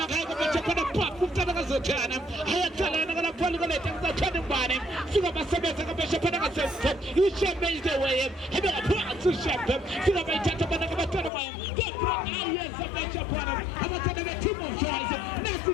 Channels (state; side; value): drops out; right; at 11.3 s